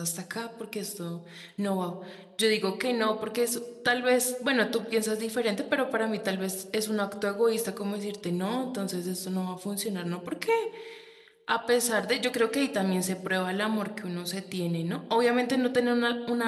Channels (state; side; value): identical; both; correlation 1.00